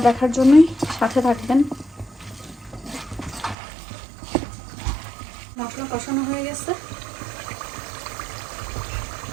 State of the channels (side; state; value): left; drops out; at 3.6 s